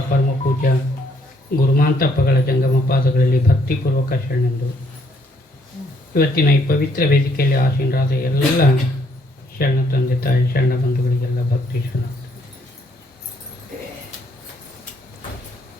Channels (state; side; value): normal; both; correlation 0.69